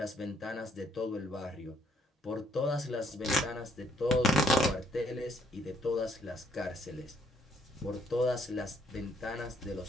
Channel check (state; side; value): normal; both; correlation 0.68